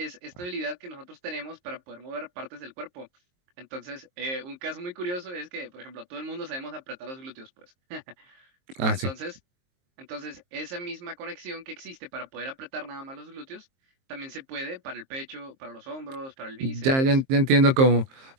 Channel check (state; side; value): late; left; 23 ms